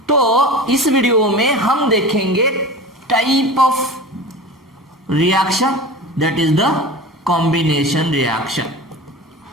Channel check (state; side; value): normal; both; correlation 0.33